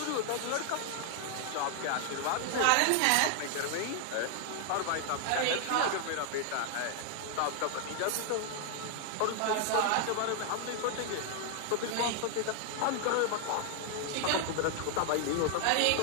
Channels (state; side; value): different; both; correlation 0.00